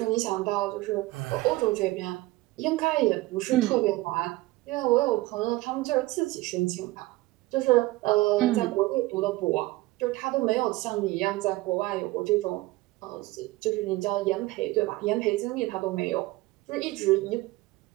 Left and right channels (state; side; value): quieter; left; 19.8 dB